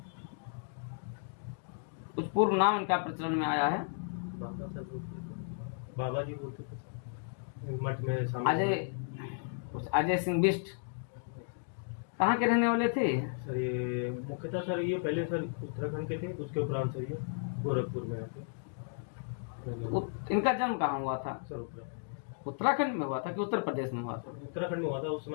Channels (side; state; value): right; silent; digital silence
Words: कुछ पूर्व नाम इनका प्रचलन में आया है? बाबा सर बोलते थे, बाबा जी बोलते थे मठ में शामिल। अजय सिंह बिष्ट कहाँ के रहने वाले थे? सर ये मुख्यतः सर ये पहले सर उत्तराखंड के थे, उसके उपरांत सर ये गोरखपुर में रहते। इनका जन्म कहाँ हुआ था? सर उत्तराखंड में हुआ था कि उत्तर प्रदेश में हुआ था? उत्तराखंड में हुआ था उस